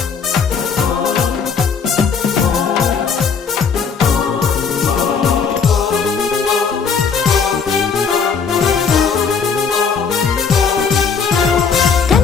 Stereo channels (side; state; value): right; quieter; 5.9 dB